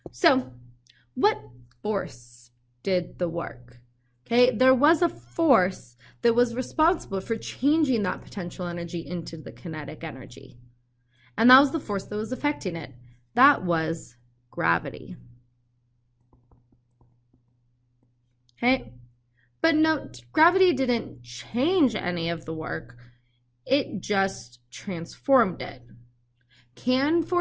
So what force did the work? Okay, there was a force that was responsible for changing that potential energy into the kinetic energy. And that was the force that was affecting it. That was gravity. Okay, but note, gravity didn't change any of the work. It just transformed it. Can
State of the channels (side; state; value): both; identical; correlation 1.00